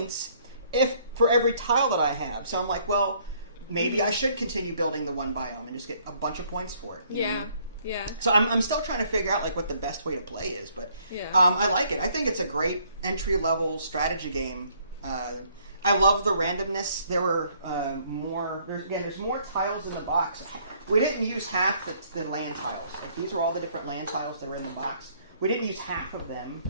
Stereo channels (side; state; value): both; inverted; correlation -0.64